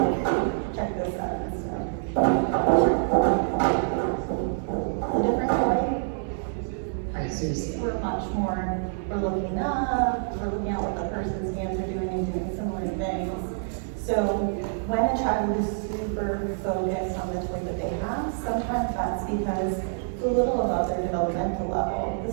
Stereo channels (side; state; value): left; silent; digital silence